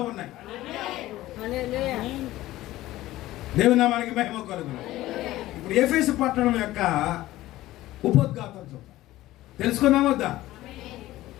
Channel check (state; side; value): quieter; right; 16.1 dB